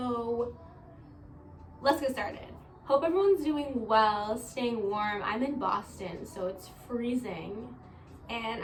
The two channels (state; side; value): identical; both; correlation 1.00